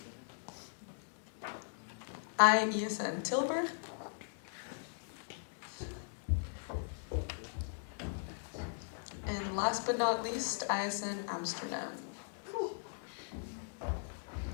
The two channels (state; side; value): silent; right; digital silence